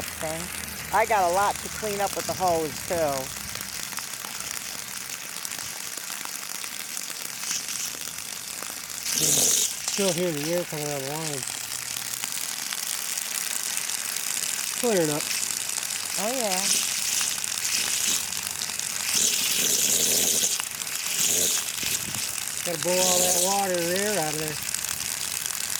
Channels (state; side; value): identical; both; correlation 1.00